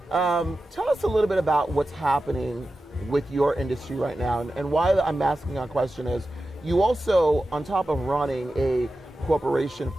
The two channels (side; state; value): both; normal; correlation 0.93